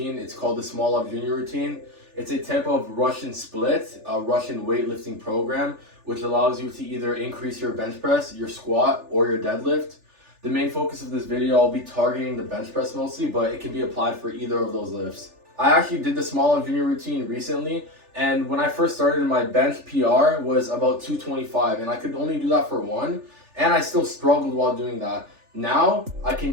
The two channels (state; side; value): late; left; 3.4 ms